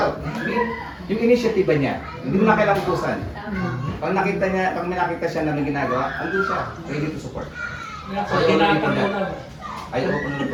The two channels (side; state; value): both; identical; correlation 1.00